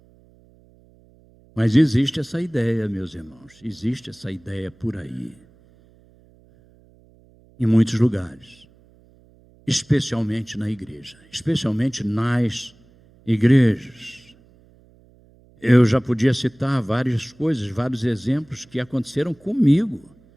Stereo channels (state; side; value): noise; right; hum, 29 dB below the sound